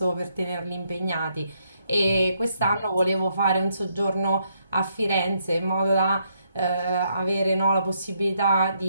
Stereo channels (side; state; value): both; inverted; correlation -0.75